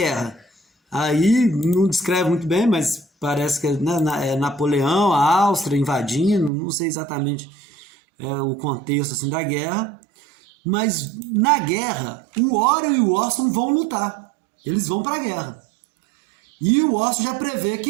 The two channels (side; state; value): left; drops out; at 6.5 s